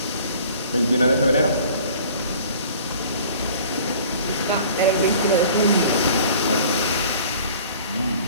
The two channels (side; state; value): both; inverted; correlation -0.48